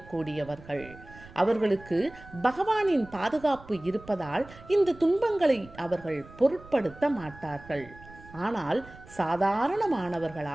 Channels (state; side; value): noise; right; rumble, 20 dB below the sound